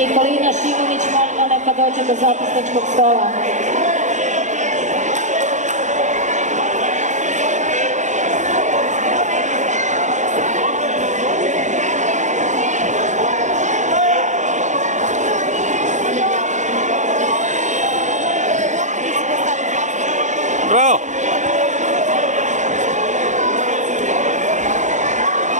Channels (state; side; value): late; left; 0.35 ms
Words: Šimović, molimo neka dođe do zapisničkog stola. Bravo!